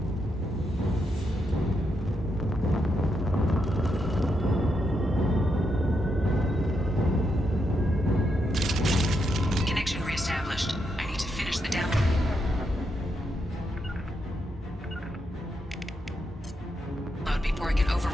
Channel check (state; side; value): normal; both; correlation 0.81